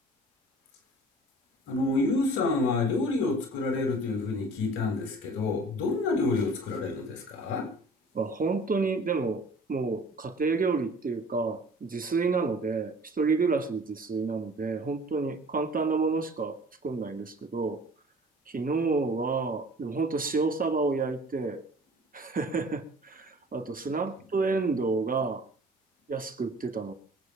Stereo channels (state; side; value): normal; both; correlation 0.47